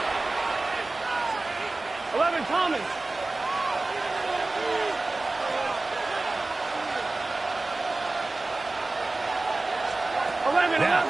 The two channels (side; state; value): left; quieter; 3.2 dB